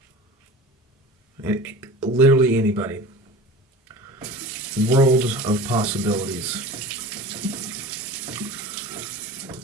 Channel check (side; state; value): both; normal; correlation 0.37